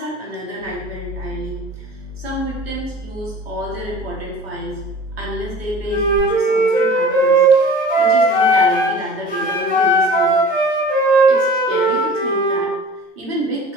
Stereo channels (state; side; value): normal; both; correlation 0.43